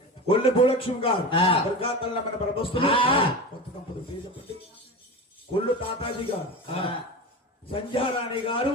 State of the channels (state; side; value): normal; both; correlation 0.28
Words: కొల్లి భూలక్ష్మి గారు దుర్గాతల్ల మన ప్రభస్తులు కొత్త దంపతులు పేరు చెప్పండి కొల్లు తాతాజీ గారు సంధ్యారాణి గారు